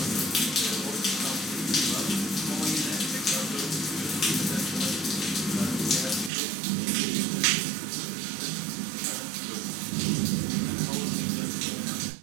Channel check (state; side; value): drops out; left; at 6.3 s